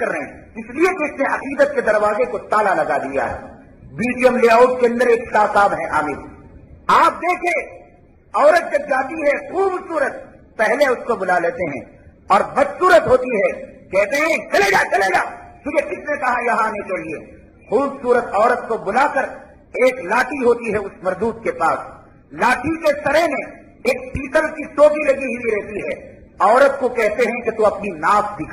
رہے ہیں، اس لیے کہ اس نے عقیدت کے دروازے کو تالا لگا دیا ہے۔ BTM لے آؤٹ کے اندر ایک شاہ صاحب ہیں عامر، آپ دیکھیں عورت جب جاتی ہے خوبصورت، پہلے اس کو بلا لیتے ہیں، اور بدصورت ہوتی ہے کہتے ہیں چلے جا چلے جا، تجھے کس نے کہا یہاں آنے کے لیے؟ خوبصورت عورت کو بلا کر ایک لاٹھی ہوتی ہے اس مردود کے پاس، لاٹھی کے سرے میں ایک پیتل کی ٹوپی لگی ہوئی رہتی ہے، عورت کو کہتے ہیں کہ تو اپنی ناف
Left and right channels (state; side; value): identical; both; correlation 1.00